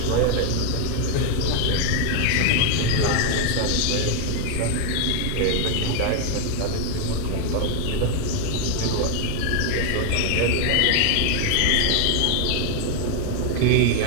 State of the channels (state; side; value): different; both; correlation 0.01